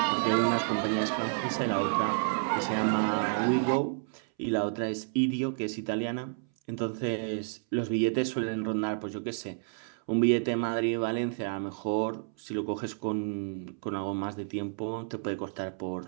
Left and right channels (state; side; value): silent; left; 58 dB below the other